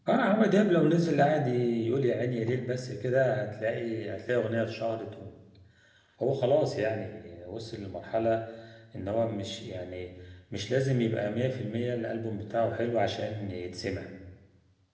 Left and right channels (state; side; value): identical; both; correlation 1.00